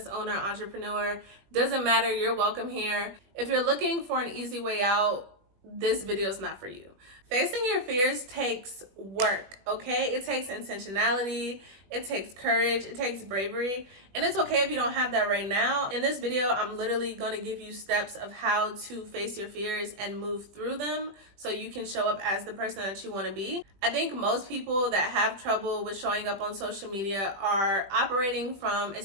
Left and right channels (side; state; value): left; late; 20 ms